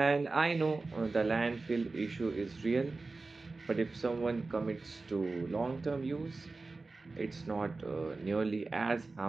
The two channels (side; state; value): left; quieter; 3.6 dB